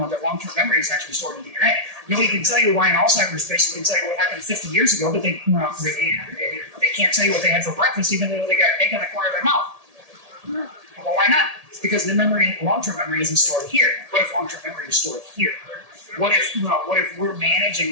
long-term memory is actually stored in DNA. Nobody can tell you why an Alzheimer's patient can tell you what happened 50 years ago, but they can't tell you what they had for breakfast, even though they got egg on the corner of their mouth. Well, why not? Because the long-term memory isn't stored here. What if long-term memory is stored here? What if we're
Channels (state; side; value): late; left; 1.8 ms